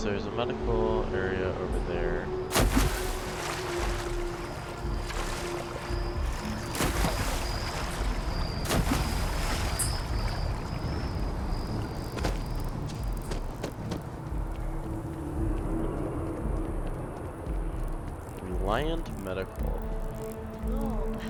there's a medical area over there. Reliant Medical. Oh,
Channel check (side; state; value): both; identical; correlation 1.00